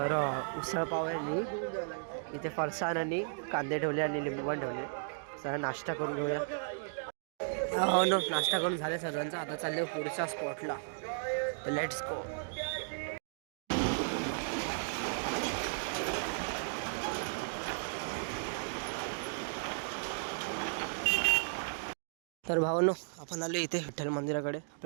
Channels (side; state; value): left; silent; digital silence